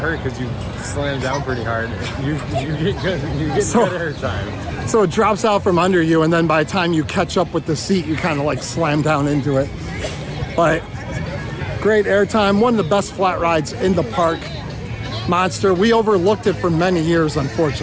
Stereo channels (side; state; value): both; identical; correlation 1.00